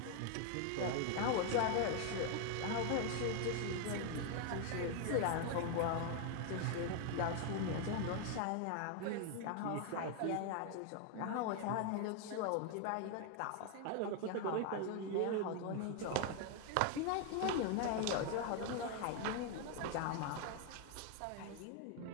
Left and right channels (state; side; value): different; both; correlation 0.00